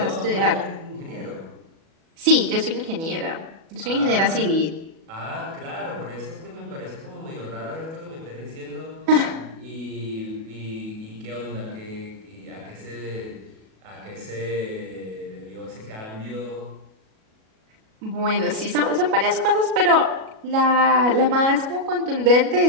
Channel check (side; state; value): left; late; 37 ms